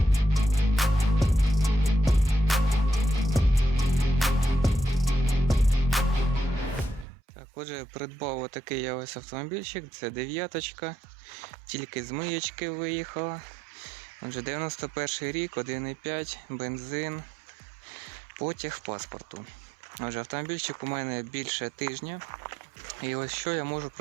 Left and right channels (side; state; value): left; drops out; at 7.1 s